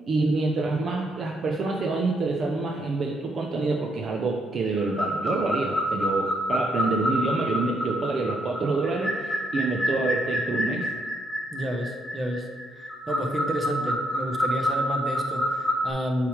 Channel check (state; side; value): normal; both; correlation 0.75